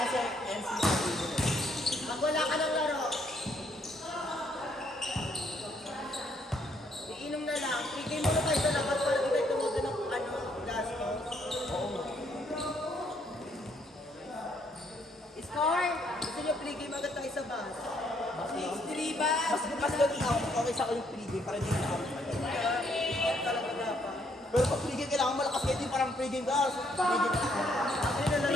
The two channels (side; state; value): both; normal; correlation 0.70